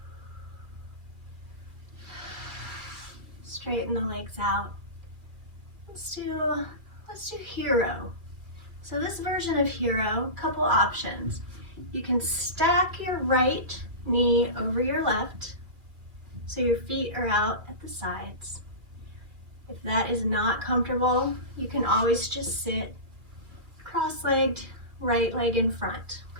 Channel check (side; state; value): left; late; 2.3 ms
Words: Straighten the legs out. Let's do hero. So this version of hero, couple options. You can stack your right knee over your left, so your feet are out at the sides. If that is not comfortable, you can always just sit cross-legged, right leg in front,